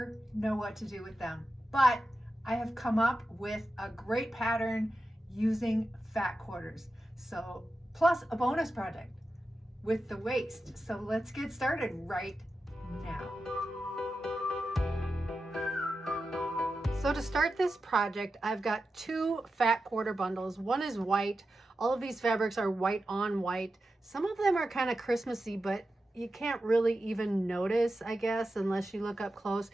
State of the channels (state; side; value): normal; both; correlation 0.91